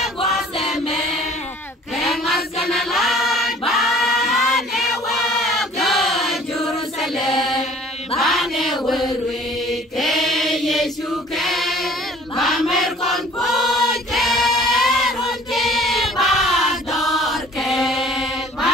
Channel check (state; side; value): normal; both; correlation 0.51